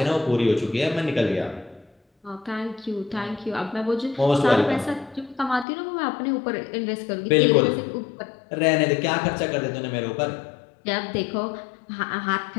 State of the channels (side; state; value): right; drops out; at 5.7 s